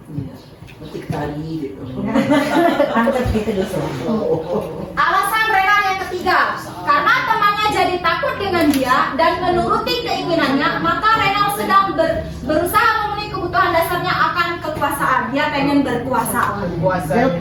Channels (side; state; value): both; identical; correlation 1.00